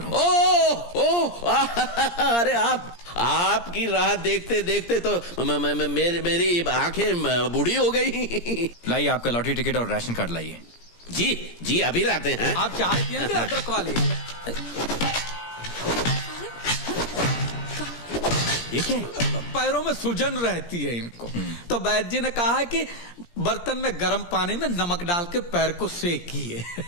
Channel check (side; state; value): right; late; 17 ms